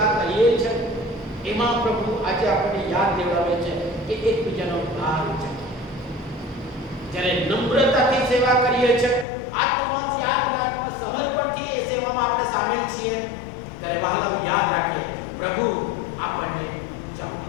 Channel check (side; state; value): right; drops out; at 9.2 s